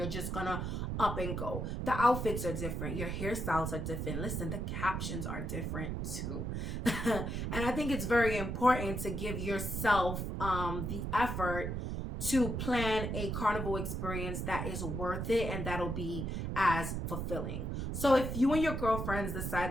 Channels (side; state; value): right; noise; rumble, 3 dB below the sound